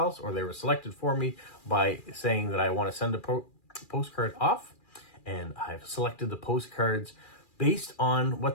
or they were selected for me by saying that I want to send a postcard off, and I've selected the postcards based on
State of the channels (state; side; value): late; right; 2.4 ms